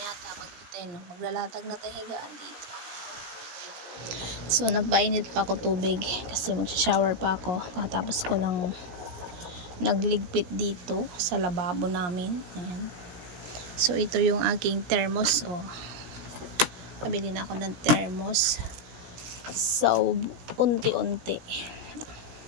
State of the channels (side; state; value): left; late; 17 ms